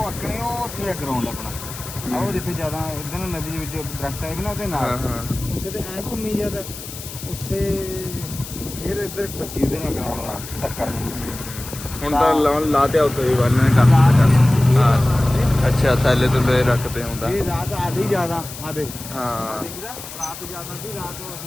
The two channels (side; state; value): left; noise; hiss, 12 dB below the sound